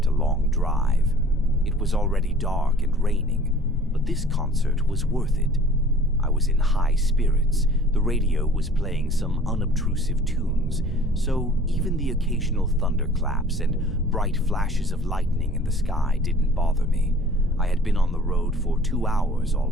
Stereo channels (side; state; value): both; normal; correlation 0.50